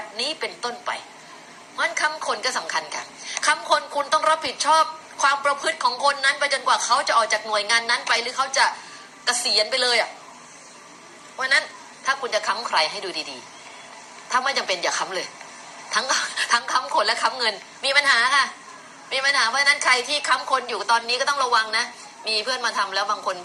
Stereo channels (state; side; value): identical; both; correlation 1.00